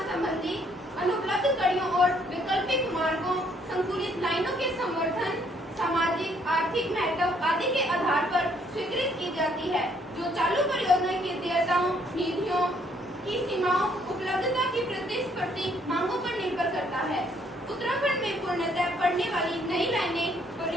संबंधी अनुपलब्ध कड़ियों और वैकल्पिक मार्गों, संकुलित लाइनों के संवर्धन, सामाजिक आर्थिक महत्व आदि के आधार पर स्वीकृत की जाती है, जो चालू परियोजना की देयताओं, निधियों की सीमाओं, उपलब्धता की प्रतिस्पर्धी मांगों पर निर्भर करता है। उत्तराखंड में पूर्णतः पड़ने वाली नई लाइनें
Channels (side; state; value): both; normal; correlation 0.66